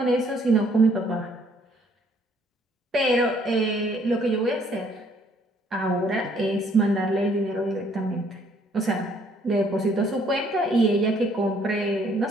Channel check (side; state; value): both; normal; correlation 0.64